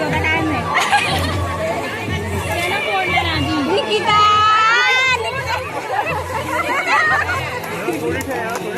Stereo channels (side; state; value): both; identical; correlation 1.00